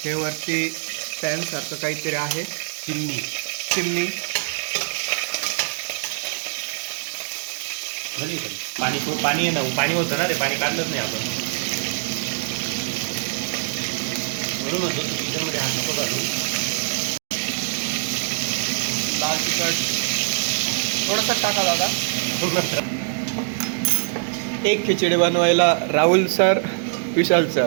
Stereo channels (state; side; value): silent; left; 63 dB below the other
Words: हे वरती पॅन सारखं काहीतरी आहे. चिमणी. चिमणी. झाली तरी पाणी आहे ना, पाणी होतं ना रे, पाणी काढलंच नाही आपण. म्हणून किचनमध्ये हात नको घालू. लाल तिखट थोडंसं टाका बघा. एक खिचडी बनवायला राहुल सर, विशाल